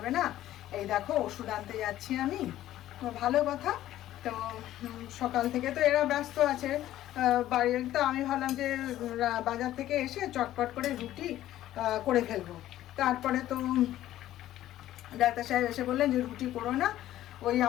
না, এই দেখো ওষুধ আনতে যাচ্ছি আমি। তো ভালো কথা। তো সকাল থেকে তো এরা ব্যস্ত আছে বাড়ির, তো আমি ভাবলাম যে বাজার থেকে এসে চটপট করে রুটি করে ফেলবো। তারপরে তো ডাক্তার সাহেব এসে বললেন যে রুটি করো না, ওই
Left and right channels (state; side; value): quieter; right; 13.6 dB